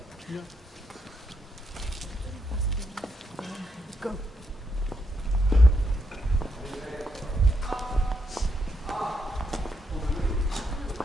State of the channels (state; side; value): normal; both; correlation 0.79